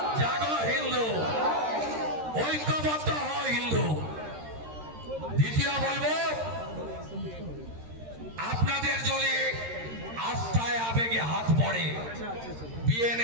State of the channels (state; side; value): late; left; 13 ms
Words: জাগো হিন্দু, ঐক্যবদ্ধ হও হিন্দু। দ্বিতীয় বলবো, আপনাদের যদি আস্থায় আবেগে হাত পড়ে